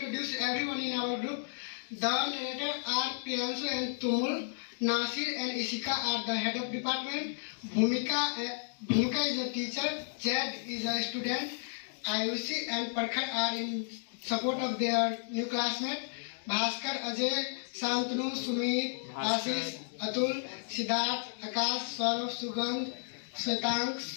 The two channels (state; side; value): silent; right; digital silence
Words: everyone in our group. The narrator are Priyanshu and Tumul. Nasir and Ishika are the head of department. Bhumika is a teacher. Jed is a student. Ayushi and Parkhar are in support of their new classmate. Bhaskar, Ajay, Santanu, Sumit, Ashish, Atul, Siddharth, Akash, Saurav, Sugandh, Svetank,